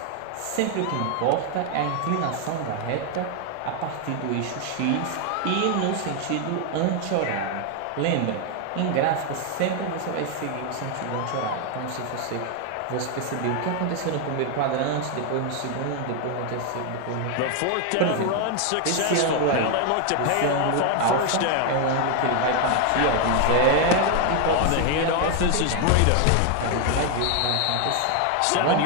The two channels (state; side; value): different; both; correlation 0.01